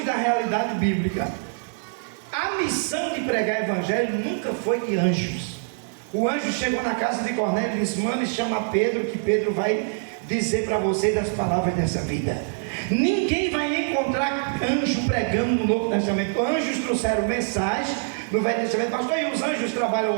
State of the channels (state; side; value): silent; left; digital silence